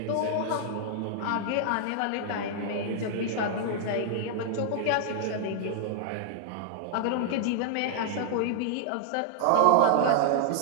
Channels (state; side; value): different; both; correlation -0.01